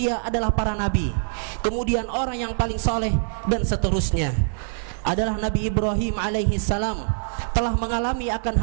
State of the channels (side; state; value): left; silent; 63 dB below the other